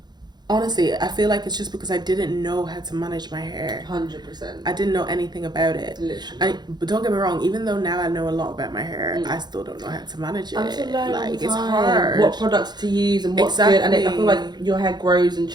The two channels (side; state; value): left; late; 0.21 ms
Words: honestly, I feel like it's just because I didn't know how to manage my hair. 100%. I didn't know anything about it. Literally. But don't get me wrong, even though now I know a lot about my hair, I still don't know how to manage it. Like, it's hard. What products to use and what's good. And I feel like your hair grows and